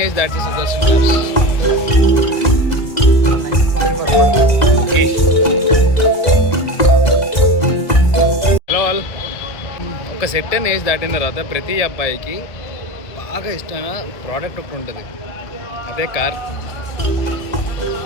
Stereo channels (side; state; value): right; late; 2.0 ms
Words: age that Sudarshan క్లాబ్స్. Hello all. ఒక సెట్ అండ్ ఏజ్ దాటిన తర్వాత ప్రతి అబ్బాయికి బాగా ఇష్టమైన ప్రోడక్ట్ ఒకటి ఉంటుంది, అదే కార్.